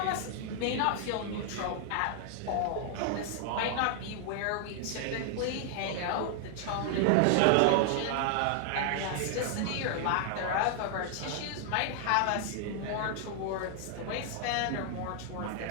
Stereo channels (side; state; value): both; different; correlation 0.00